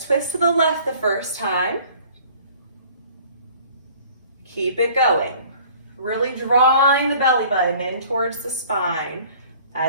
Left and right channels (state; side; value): inverted; both; correlation -0.51